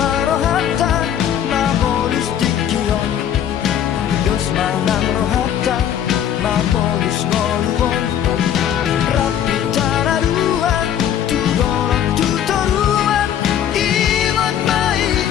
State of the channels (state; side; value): quieter; right; 9.8 dB